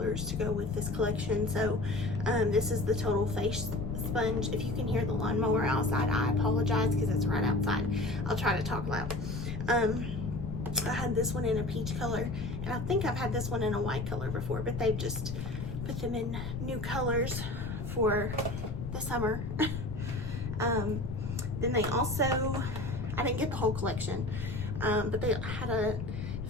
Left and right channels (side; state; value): left; noise; rumble, 5 dB below the sound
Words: to go with this collection. So this is the Total Face Sponge. If you can hear the lawnmower outside, I apologize because it's right outside. I'll try to talk loud. I had this one in a peach color, and I think I've had this one in a white color before, but they've just put them in new colors for the summer. Then they also, I didn't get the whole collection, but they had a